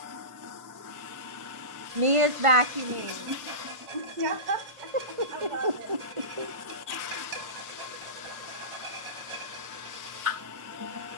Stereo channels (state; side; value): late; left; 1.5 ms